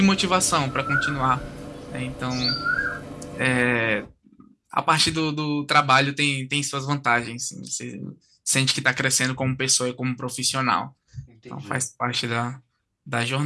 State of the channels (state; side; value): identical; both; correlation 1.00